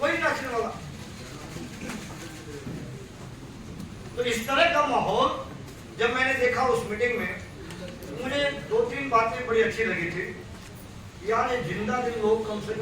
नाचने वाला। तो इस तरह का माहौल जब मैंने देखा उस मीटिंग में, मुझे 2-3 बातें बड़ी अच्छी लगी थी। यार ये जिंदा दिल लोग कम से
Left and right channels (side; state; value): both; identical; correlation 1.00